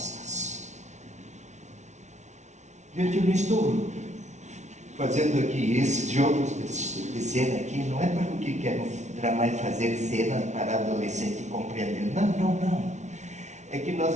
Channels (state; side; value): late; left; 0.33 ms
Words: Gente, eu não estou fazendo aqui esses jogos de cena aqui, não é para o que quero fazer cenas para adolescente compreender. Não. É que